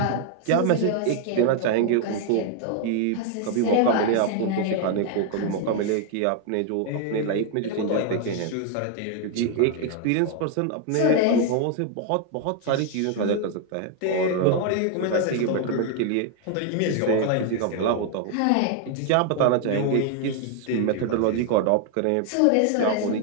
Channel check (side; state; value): both; different; correlation 0.00